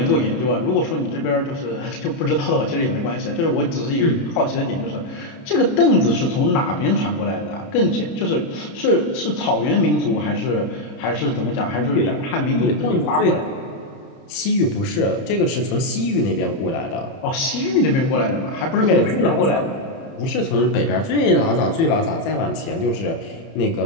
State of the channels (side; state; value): right; late; 30 ms